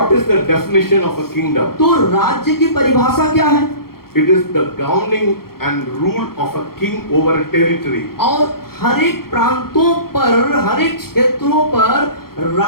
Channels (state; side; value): late; right; 0.94 ms